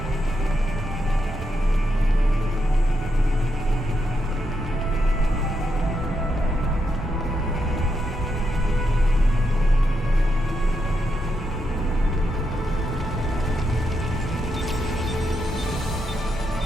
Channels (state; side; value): normal; both; correlation 0.82